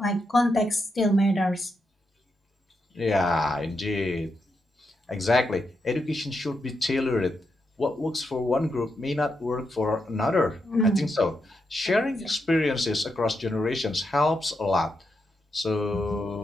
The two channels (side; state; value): both; normal; correlation 0.84